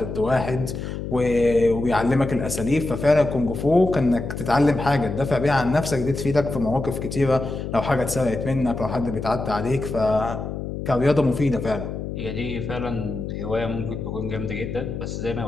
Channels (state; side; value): noise; left; hum, 6 dB below the sound